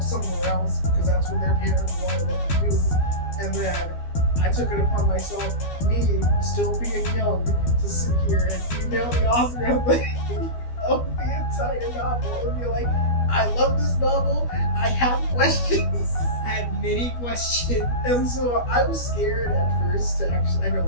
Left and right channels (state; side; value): late; right; 12 ms